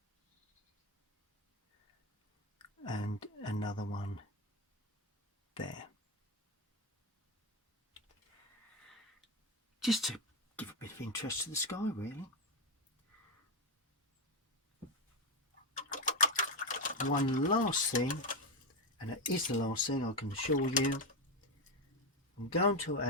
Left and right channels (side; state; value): both; normal; correlation 0.11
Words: And another one there. Just to give a bit of interest to the sky, really. One last thing, and it is the last thing I can assure you, I'm going to